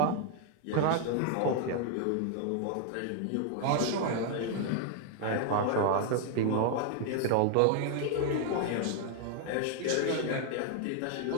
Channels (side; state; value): both; different; correlation 0.00